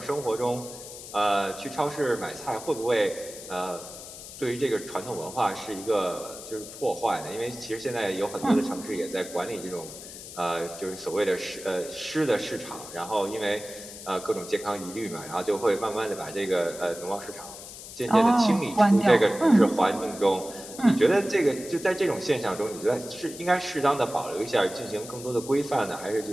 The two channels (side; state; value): left; noise; hiss, 13 dB below the sound